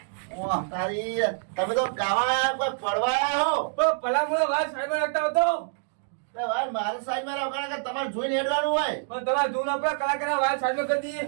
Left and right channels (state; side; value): silent; left; digital silence